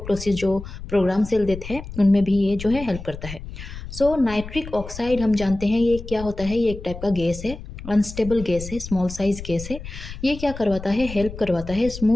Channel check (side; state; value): left; noise; rumble, 11 dB below the sound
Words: जो प्रोग्राम सेल देते हैं उनमें भी ये जो है हेल्प करता है। सो नाइट्रिक ऑक्साइड हम जानते हैं ये क्या होता है, ये एक टाइप का गैस है, अनस्टेबल गैस है, स्मॉल साइज गैस है। ये क्या करवाता है, हेल्प करवाता है